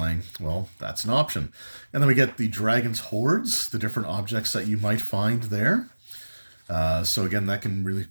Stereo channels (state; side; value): inverted; both; correlation -1.00